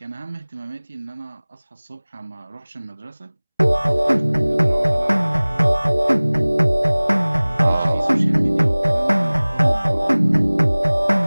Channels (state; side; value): inverted; both; correlation -1.00